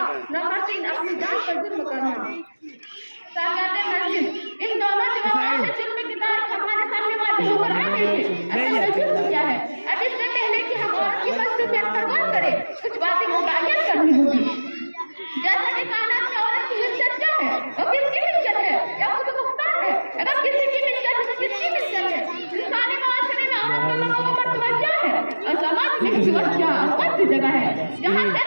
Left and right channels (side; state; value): both; inverted; correlation -1.00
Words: नंबर 3 अपनी जान पर जुल्म करना। सागाते मस्जिद इन दोनों जवाबों से जुल्म की तारीफ हमारे सामने वाजिब हो रहा है। जुल्म क्या है? अब इससे पहले कि हम औरत की मसलूबियत पर गौर करें कुछ बातें मुतय्यन करनी होगी। जैसा कि कायनात में औरत की इज्जत क्या है, वो किसकी मिल्कियत है या खुद मुख्तार है? अगर किसी की मिल्कियत है तो किसकी मिल्कियत है? इंसानी माशरे में औरत का मकाम मर्तबा क्या है और समाज में इसकी क्या कौन सी जगह है जहाँ से